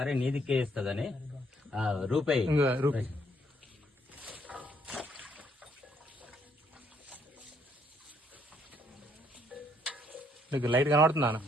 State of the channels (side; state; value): both; normal; correlation 0.69